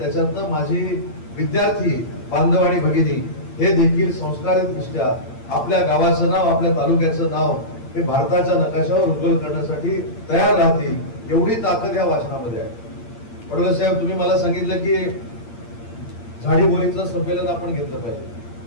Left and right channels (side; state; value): right; late; 8.7 ms